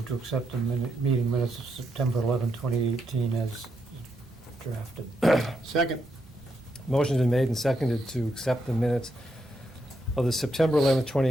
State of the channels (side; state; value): both; normal; correlation 0.80